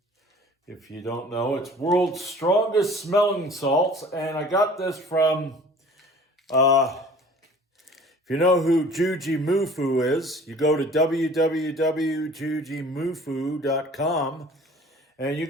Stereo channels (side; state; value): both; normal; correlation 0.48